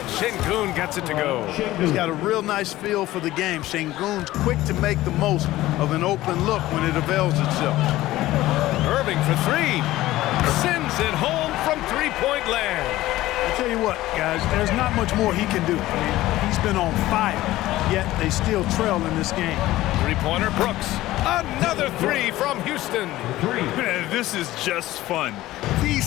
Şengün gets it to go. He's got a real nice feel for the game. Şengün's quick to make the most of an open look when it avails itself. Irving for 3. Sends it home from three-point land. I tell you what, guys, there's not much more he can do. I mean, he's been on fire, yet they still trail in this game. Three-pointer, Brooks. Another 3 from Houston. Man, this is just fun. These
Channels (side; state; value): right; quieter; 16.3 dB